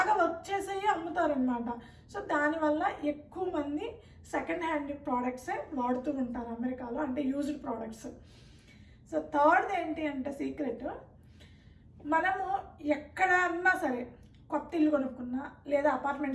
వర్క్ చేసేవి అమ్ముతారనమాట. సో దానివల్ల ఎక్కువ మంది సెకండ్ హ్యాండ్ ప్రోడక్ట్సే వాడుతూ ఉంటారు అమెరికాలో, అంటే యూజ్డ్ ప్రోడక్ట్స్. సో థర్డ్ ఏంటి అంటే సీక్రెట్, మనము ఎక్కడన్నా సరే కొత్త ఇల్లు కొనుక్కున్నా, లేదా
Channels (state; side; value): identical; both; correlation 1.00